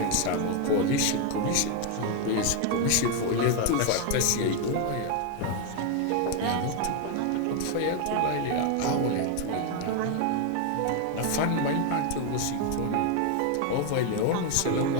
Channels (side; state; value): both; different; correlation 0.01